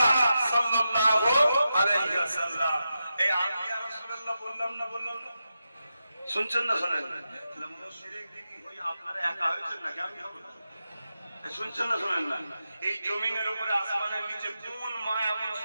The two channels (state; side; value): inverted; both; correlation -0.89